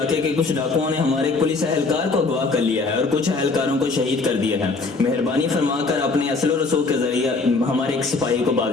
के कुछ डाकुओं ने हमारे एक पुलिस एहलकार को अगवा कर लिया है और कुछ एहलकारों को शहीद कर दिया है। मेहरबानी फरमाकर अपने असलो रसूख के जरिए हमारे एक सिपाही को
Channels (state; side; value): quieter; right; 3.9 dB